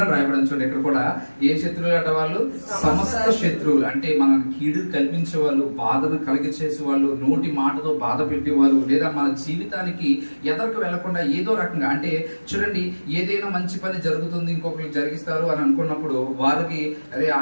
అని రాయబడి. చూడండి, ఇక్కడ కూడా ఏ శత్రువులు అంటే వాళ్ళు సమస్త శత్రువులు. అంటే మన కీడు కల్పించే వాళ్ళు, బాధను కలిగించేసే వాళ్ళు, నోటి మాటతో బాధ పెట్టేవాళ్ళు, లేదా మన జీవితానికి ఎదరకు వెళ్లకుండా ఏదో రకంగా, అంటే చూడండి, ఏదైనా మంచి పని జరుగుతుంది ఇంకొకరికి జరిగిస్తారు అని అనుకున్నప్పుడు వారికి, అరే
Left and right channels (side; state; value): both; inverted; correlation -1.00